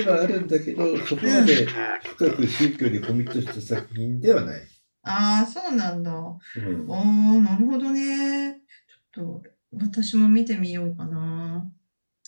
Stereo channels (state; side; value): inverted; both; correlation -1.00